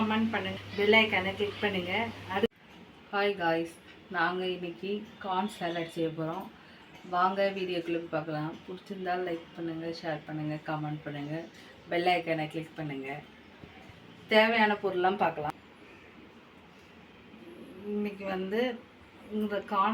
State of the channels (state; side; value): identical; both; correlation 1.00